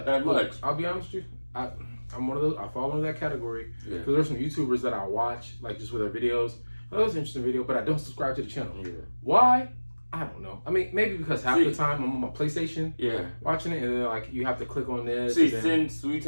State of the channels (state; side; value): inverted; both; correlation -1.00